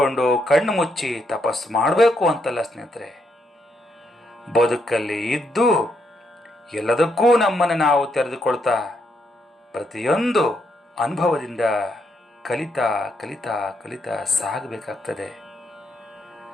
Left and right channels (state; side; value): normal; both; correlation 0.77